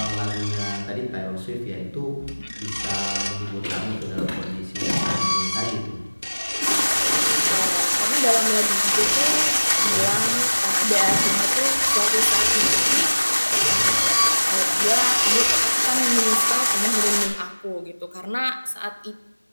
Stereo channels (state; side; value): inverted; both; correlation -1.00